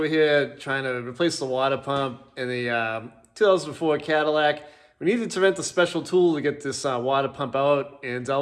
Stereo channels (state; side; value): identical; both; correlation 1.00